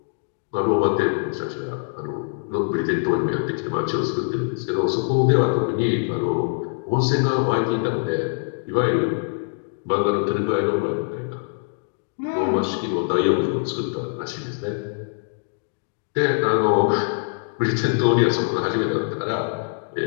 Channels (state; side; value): silent; right; digital silence